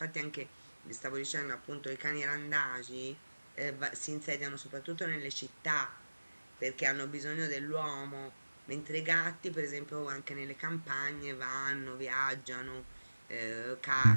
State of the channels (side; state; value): both; inverted; correlation -1.00